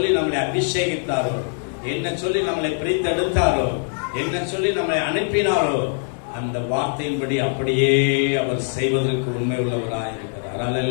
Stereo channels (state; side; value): silent; right; 56 dB below the other